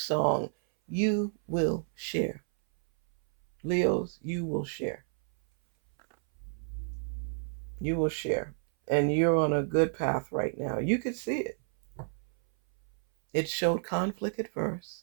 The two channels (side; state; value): left; silent; 58 dB below the other